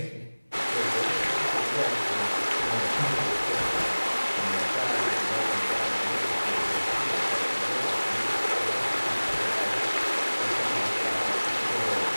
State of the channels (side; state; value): both; inverted; correlation -1.00